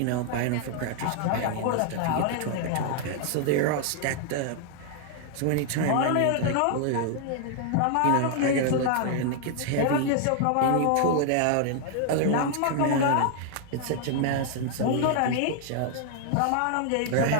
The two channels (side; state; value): both; different; correlation 0.00